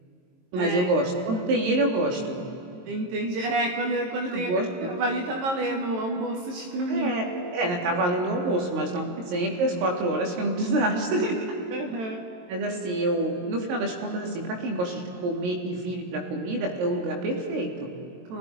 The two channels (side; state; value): left; late; 22 ms